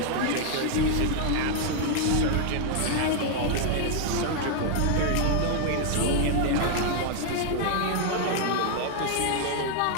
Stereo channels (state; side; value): different; both; correlation 0.00